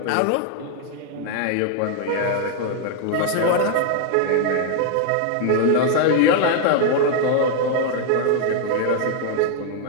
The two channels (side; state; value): both; different; correlation 0.00